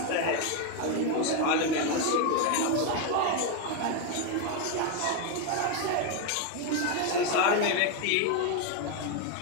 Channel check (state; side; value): different; both; correlation 0.02